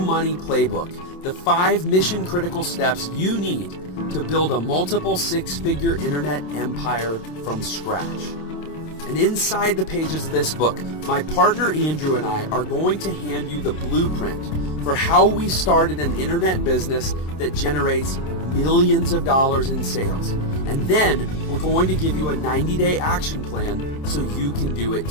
Playbook, the 5 mission-critical steps you need to build a multiple six-figure internet empire from scratch. And inside the pages of this book, my partner Andrew and I are going to hand you the blueprint for how we started an internet business that generates millions of dollars in sales. And then we're going to give you a 90-day action plan so you can do it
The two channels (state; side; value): late; right; 27 ms